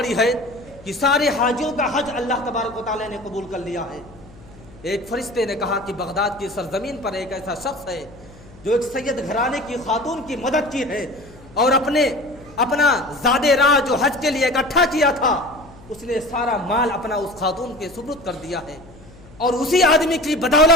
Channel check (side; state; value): left; noise; hum, 22 dB below the sound